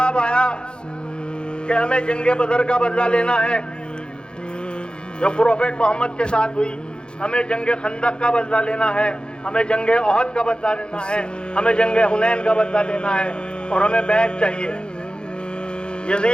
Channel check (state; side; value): late; right; 0.050 ms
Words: آیا کہ ہمیں جنگ بدر کا بدلہ لینا ہے جو پروفیٹ محمد کے ساتھ ہوئی, ہمیں جنگ خندق کا بدلہ لینا ہے, ہمیں جنگ احد کا بدلہ لینا ہے, ہمیں جنگ حنین کا بدلہ لینا ہے, اور ہمیں بیعت چاہیے.